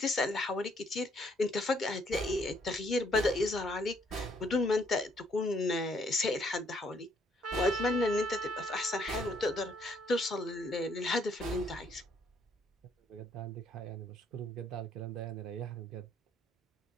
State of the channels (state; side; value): normal; both; correlation 0.67